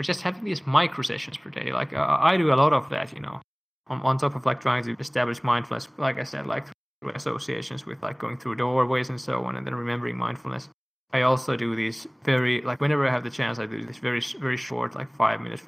just having these micro sessions per day. Like I do a lot of that, on top of like trying to establish mindfulness, like I said, like through associations with like going through doorways and so on, and then remembering mindfulness. I also do these whenever I have the chance, I do this very, very short, like 5 minutes,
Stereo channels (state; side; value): identical; both; correlation 1.00